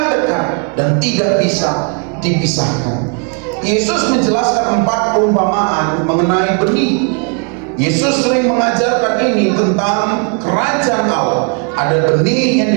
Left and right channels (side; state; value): left; quieter; 38.3 dB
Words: dekat dan tidak bisa dipisahkan. Yesus menjelaskan 4 perumpamaan mengenai benih. Yesus sering mengajarkan ini tentang kerajaan Allah. Ada benih yang